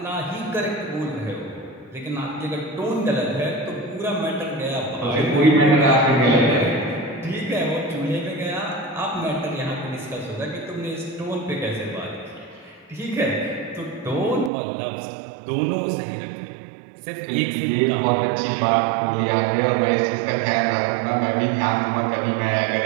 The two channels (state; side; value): drops out; left; at 14.5 s